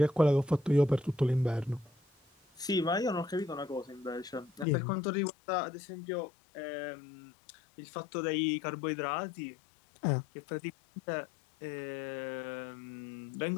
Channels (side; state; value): right; drops out; at 4.7 s